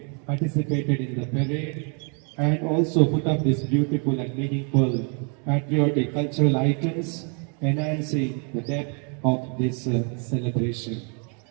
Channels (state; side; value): quieter; left; 38.7 dB